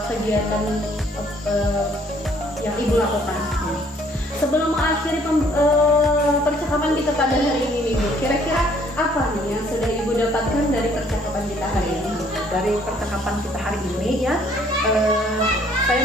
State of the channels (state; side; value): normal; both; correlation 0.62